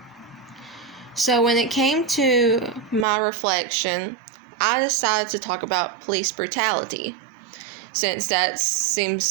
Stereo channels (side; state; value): left; drops out; at 3.1 s